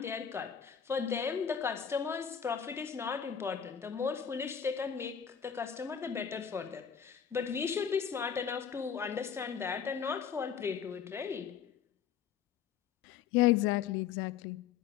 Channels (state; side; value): quieter; right; 7.9 dB